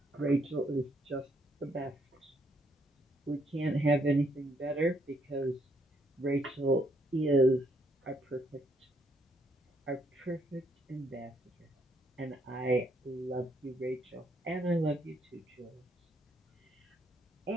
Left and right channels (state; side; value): normal; both; correlation 0.72